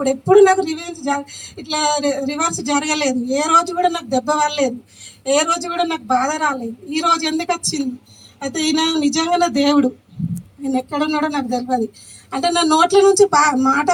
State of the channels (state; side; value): identical; both; correlation 1.00